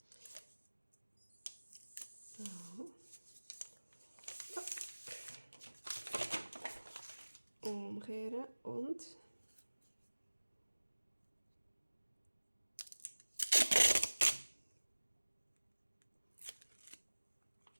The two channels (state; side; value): inverted; both; correlation -1.00